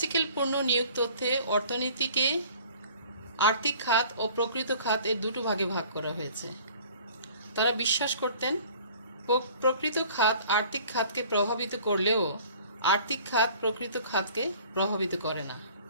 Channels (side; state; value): both; inverted; correlation -0.50